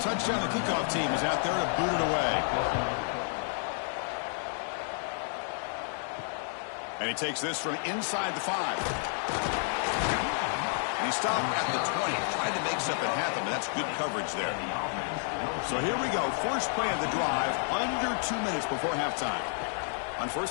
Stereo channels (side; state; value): right; silent; 56 dB below the other